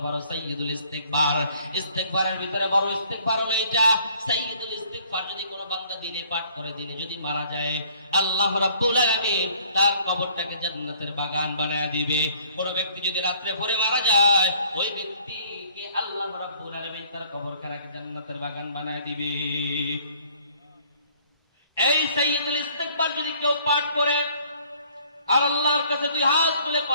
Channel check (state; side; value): inverted; both; correlation -0.59